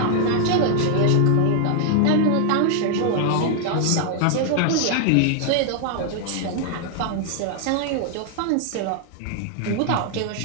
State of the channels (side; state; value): both; different; correlation 0.00